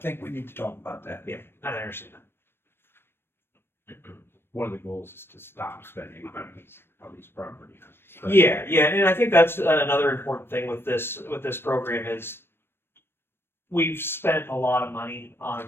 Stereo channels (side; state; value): right; late; 0.11 ms